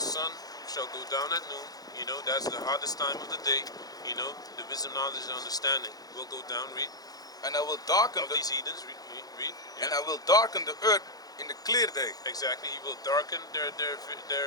shall go down at noon. You know, that's the hottest time of the day. You know, the wisdom, knowledge, and understanding will go down. Read. And I will darken these heathens. Read. Yeah. And I will darken the earth in the clear day. Exactly. He will darken their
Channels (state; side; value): late; right; 0.18 ms